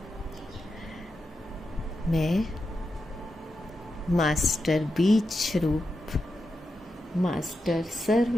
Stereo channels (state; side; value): normal; both; correlation 0.88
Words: मैं मास्टर बीज रूप मास्टर